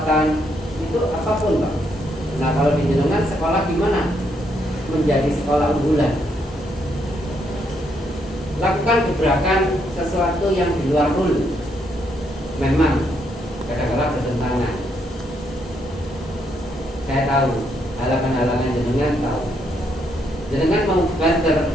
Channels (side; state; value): both; normal; correlation 0.75